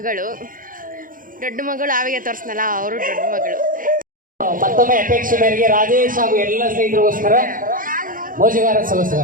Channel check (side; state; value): left; late; 0.40 ms